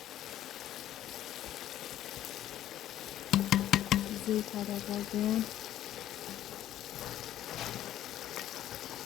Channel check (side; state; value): right; quieter; 12.3 dB